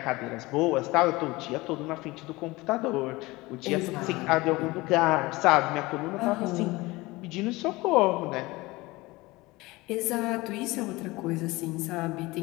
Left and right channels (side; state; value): right; quieter; 21.5 dB